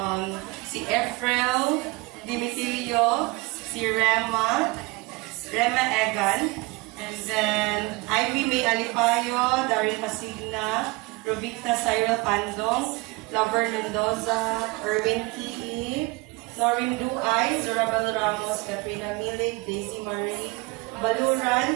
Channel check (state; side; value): quieter; left; 24.8 dB